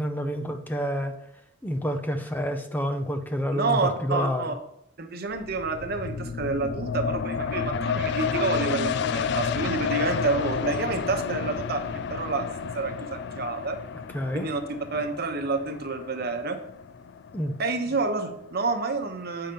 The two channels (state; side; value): normal; both; correlation 0.10